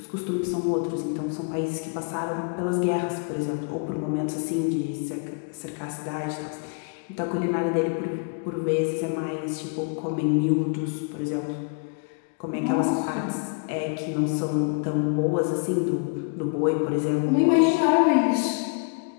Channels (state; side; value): quieter; right; 36.8 dB